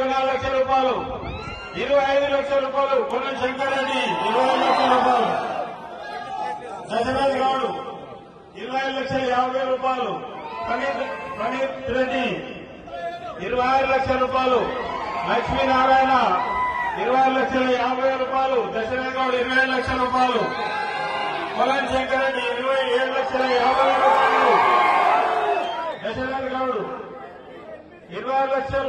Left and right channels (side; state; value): both; identical; correlation 1.00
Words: లక్షల రూపాయలు. 25 లక్షల రూపాయలు. కోవన్ శంకరెడ్డి 20 లక్షల రూపాయలు. దశరథ్ గౌడ్ 25,50,000 రూపాయలు. ఫణీత్ రెడ్డి 26 లక్షల రూపాయలు. లక్ష్మీనారాయణ 26,50,000 రూపాయలు. దశరథ్ గౌడ్ 20 లక్షల రూపాయలు. కోవన్ శంకరెడ్డి 27,50,000 రూపాయలు. దశరథ్ గౌడ్